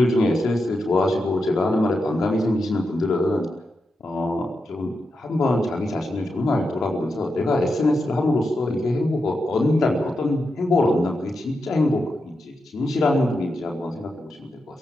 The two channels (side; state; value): both; normal; correlation 0.87